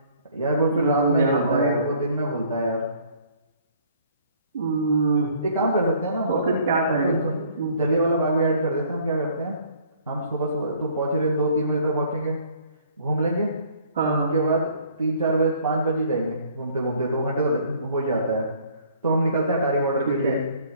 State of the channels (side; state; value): both; inverted; correlation -0.58